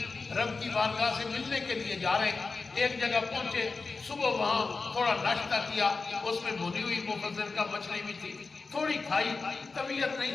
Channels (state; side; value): quieter; right; 4.1 dB